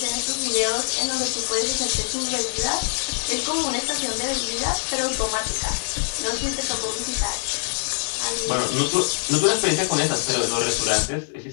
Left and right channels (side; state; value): right; silent; 63 dB below the other